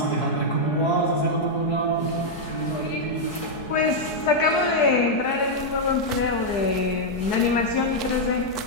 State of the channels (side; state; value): right; late; 4.6 ms